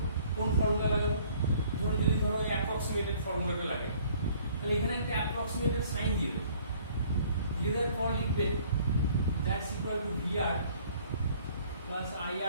কোন ফর্মুলা লাগাবো? যদি ওই অ্যাপ্রক্সিমেটেড ফর্মুলাটা লাগে, তাহলে এখানে একটা অ্যাপ্রক্সিমেটেড সাইন দিয়ে দেবো। দিয়ে দেওয়ার পর লিখবে that's equal to VR plus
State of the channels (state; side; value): inverted; both; correlation -0.57